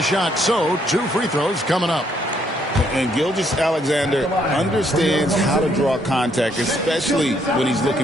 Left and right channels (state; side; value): normal; both; correlation 0.70